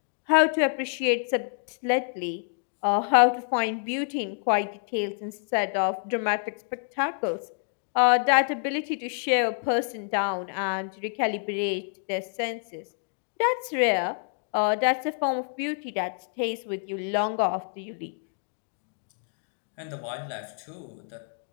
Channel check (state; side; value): silent; right; 60 dB below the other